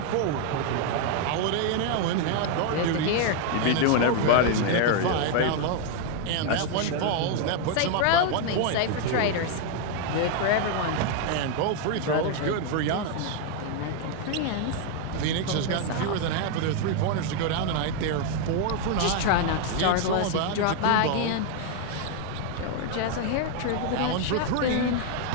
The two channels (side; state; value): both; different; correlation 0.00